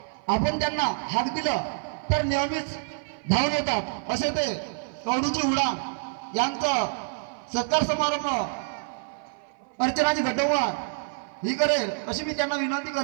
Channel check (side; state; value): left; silent; 56 dB below the other